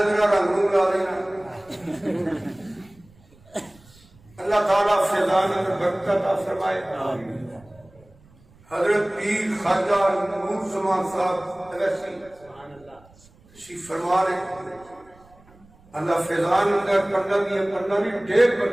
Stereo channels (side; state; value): right; noise; rumble, 27 dB below the sound